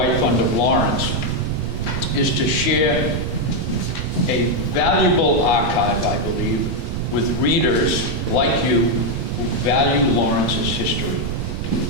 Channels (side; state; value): right; noise; rumble, 4 dB below the sound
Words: Fund of Lawrence is to share a valuable archive, I believe, with readers like you who value Lawrence's history.